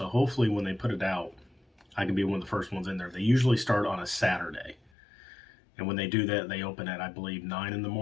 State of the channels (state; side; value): drops out; right; at 4.9 s